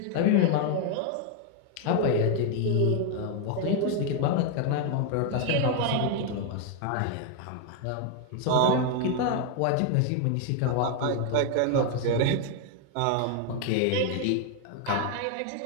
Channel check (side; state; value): both; different; correlation 0.01